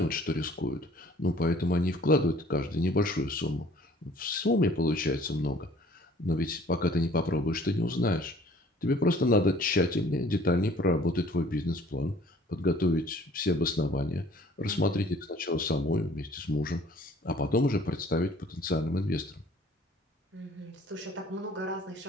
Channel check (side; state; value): both; normal; correlation 0.54